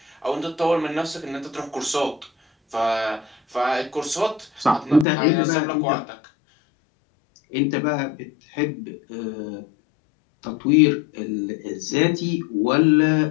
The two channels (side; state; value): right; drops out; at 5.1 s